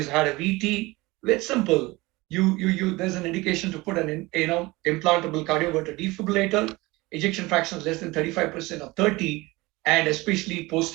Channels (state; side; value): quieter; left; 21.7 dB